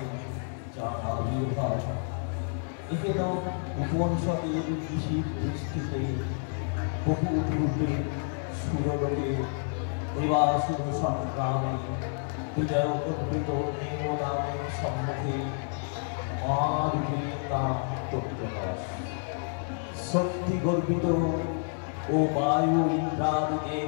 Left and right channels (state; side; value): silent; right; 58 dB below the other